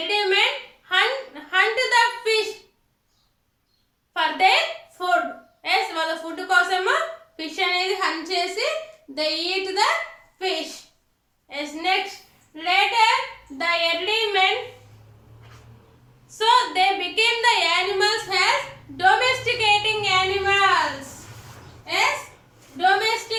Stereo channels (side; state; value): both; identical; correlation 1.00